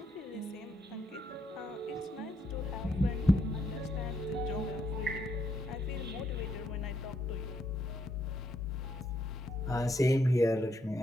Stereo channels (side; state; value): both; normal; correlation 0.75